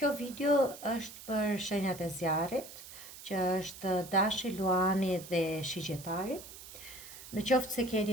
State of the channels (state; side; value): noise; right; hiss, 15 dB below the sound